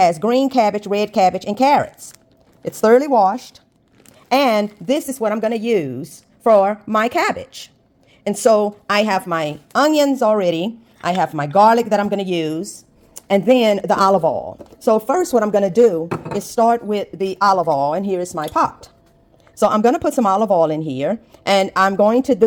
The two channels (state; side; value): identical; both; correlation 1.00